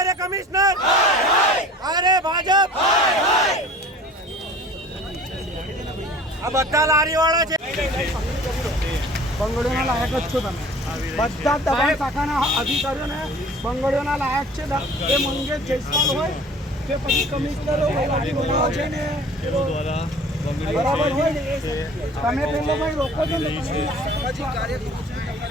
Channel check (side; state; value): both; normal; correlation 0.45